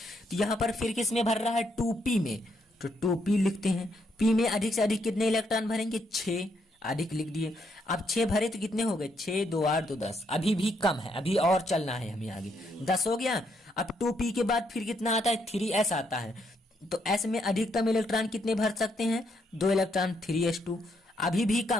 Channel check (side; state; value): both; normal; correlation 0.75